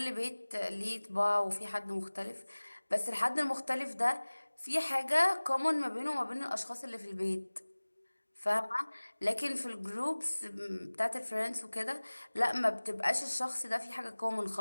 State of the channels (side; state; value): both; inverted; correlation -1.00